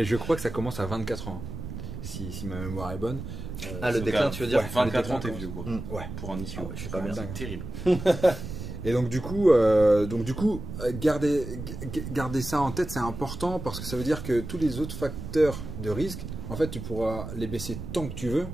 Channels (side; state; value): right; noise; rumble, 8 dB below the sound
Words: je crois que ça commence à 24 ans, hein, si ma mémoire est bonne. Le déclin, tu veux dire? Ouais. 24 ans, le t'es déclin, vieux quoi. Ouais. Pour un ischio. Ah ouais, je suis pas bien. dingue. C'est terrible. Et donc du coup, garder ça en tête, c'est important parce que ça veut dire que tous les autres facteurs de risque, en fait, tu pourras les baisser tant que tu veux